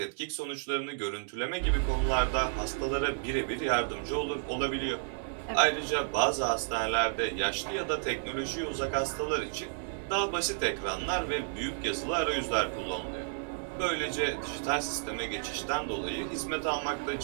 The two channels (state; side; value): silent; left; digital silence